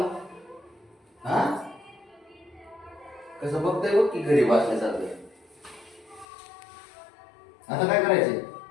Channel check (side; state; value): right; drops out; at 6.2 s